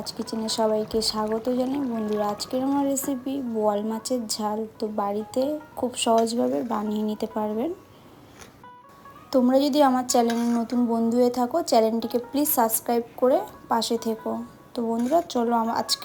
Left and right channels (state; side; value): identical; both; correlation 1.00